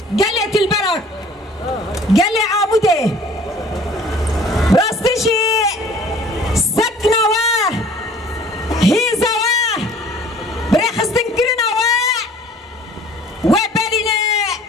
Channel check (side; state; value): both; normal; correlation 0.51